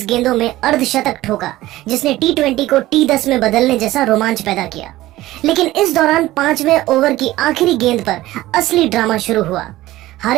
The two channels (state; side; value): quieter; left; 16.5 dB